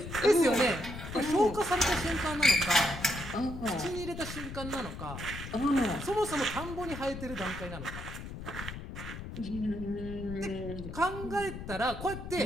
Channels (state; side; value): noise; left; rumble, 9 dB below the sound